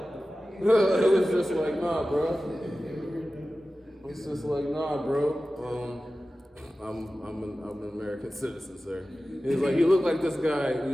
nah, bro. It's just like, nah, bro. I'm an American citizen, sir. He's like, you look like this guy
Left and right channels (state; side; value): normal; both; correlation 0.95